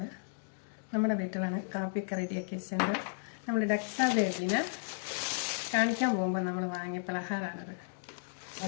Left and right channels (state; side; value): silent; right; digital silence